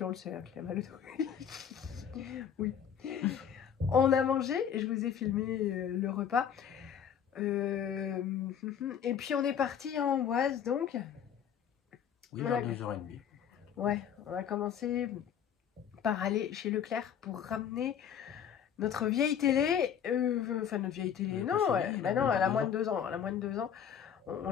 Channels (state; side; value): quieter; right; 8.5 dB